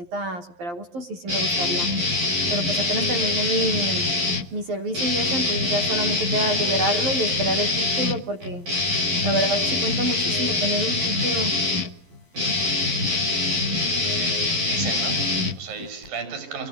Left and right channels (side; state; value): left; late; 11 ms